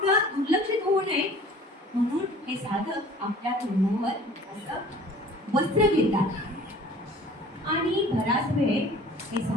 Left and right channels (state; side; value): normal; both; correlation 0.48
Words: दुर्लक्षित होऊ नये म्हणून हे साधक आपल्या तोंडावर असं वस्त्र घेतात आणि बराच वेळ हे